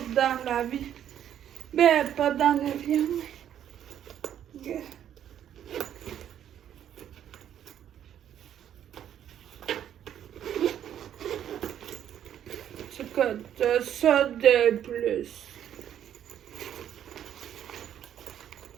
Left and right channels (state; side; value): quieter; left; 10.2 dB